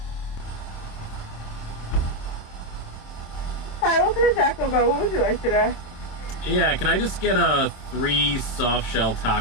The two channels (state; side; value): late; right; 27 ms